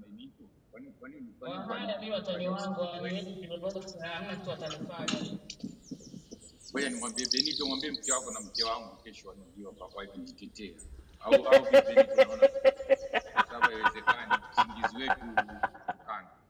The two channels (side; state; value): both; identical; correlation 1.00